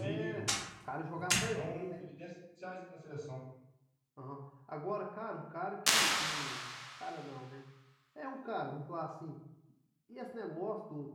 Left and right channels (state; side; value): identical; both; correlation 1.00